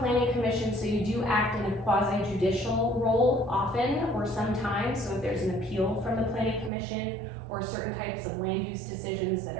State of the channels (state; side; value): drops out; left; at 6.7 s